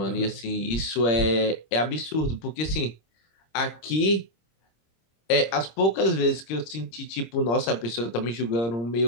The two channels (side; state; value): right; late; 26 ms